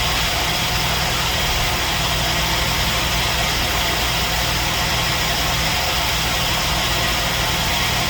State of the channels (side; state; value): both; identical; correlation 1.00